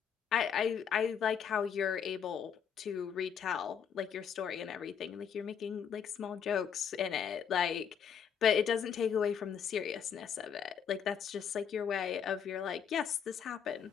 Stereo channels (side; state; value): right; quieter; 7.7 dB